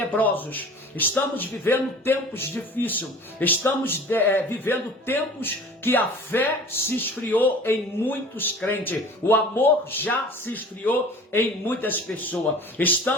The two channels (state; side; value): normal; both; correlation 0.43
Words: estamos vivendo tempos difíceis, estamos vivendo tempos que a fé se esfriou em muitos crentes, o amor já se esfriou em muitas pessoas.